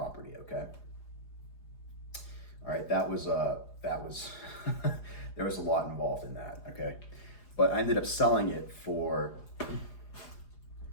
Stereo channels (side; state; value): right; late; 4.9 ms